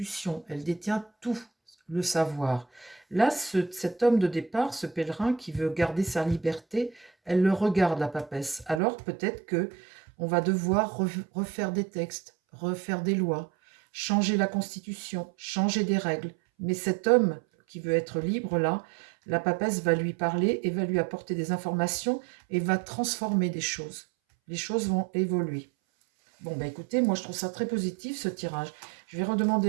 elle détient tout le savoir. Là, cet homme de départ, ce pèlerin qui veut garder sa liberté, elle le regarde, la papesse. Alors peut-être que on va devoir refaire des textes, refaire des lois, changer la Constitution, changer des règles. Mais cet homme qui veut être libre, là, la papesse va lui parler et va lui apporter des informations et va transformer des choses. Les choses vont évoluer. Bon, bah écoutez, moi je trouve ça très positif ce tirage. Je vais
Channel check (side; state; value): left; drops out; at 8.8 s